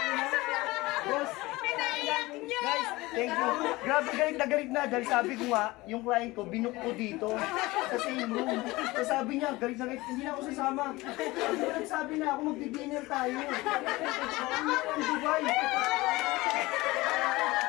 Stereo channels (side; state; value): right; quieter; 20.6 dB